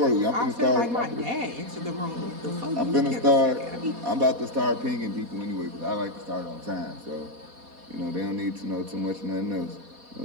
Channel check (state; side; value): late; left; 4.2 ms